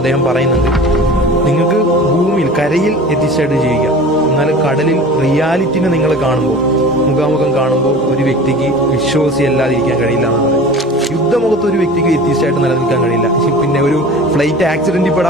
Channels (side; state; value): both; normal; correlation 0.39